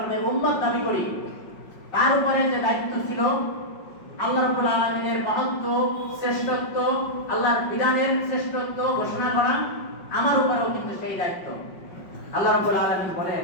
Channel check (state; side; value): late; right; 5.4 ms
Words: উম্মত দাবি করি, তার উপরে যে দায়িত্ব ছিল আল্লাহ রাব্বুল আলামিনের মহত্ব শ্রেষ্ঠত্ব, আল্লাহর বিধানের শ্রেষ্ঠত্ব ঘোষণা করা, আমার উপরেও কিন্তু সেই দায়িত্ব। আল্লাহ রাব্বুল আলামিন বলেন,